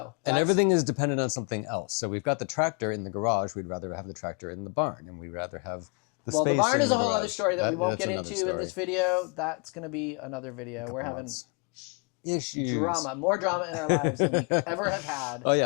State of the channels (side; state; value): right; quieter; 34.6 dB